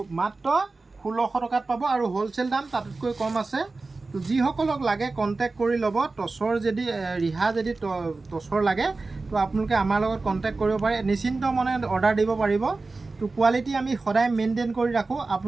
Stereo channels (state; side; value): quieter; left; 3.6 dB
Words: মাত্ৰ 1600 টকাত পাব, আৰু হ'লচেল দাম তাতকৈ কম আছে। তো যিসকলক লাগে কণ্টেক্ট কৰি ল'ব। টচৰ যদি ৰিহা যদি টচৰ লাগে, তো আপোনালোকে আমাৰ লগত কণ্টেক্ট কৰিব পাৰে, নিশ্চিন্ত মনে অৰ্ডাৰ দিব পাৰিব। তো কোৱালিটি আমি সদায় মেইনটেইন কৰি ৰাখোঁ,